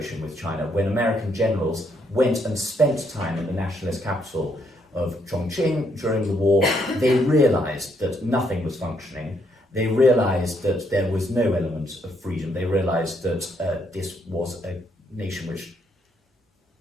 with China, when American generals went and spent time in the nationalist capital of Chongqing during the war, they realized that nothing was functioning. They realized that there was no element of freedom. They realized that this was a nation which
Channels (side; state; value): both; normal; correlation 0.73